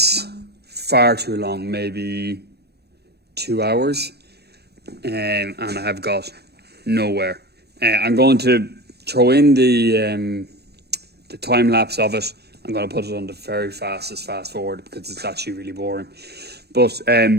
far too long, maybe 2 hours, and I have got nowhere. I'm going to throw in the time lapse of it. I'm going to put it on the very fastest fast forward because it's actually really boring. But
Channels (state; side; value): late; left; 0.47 ms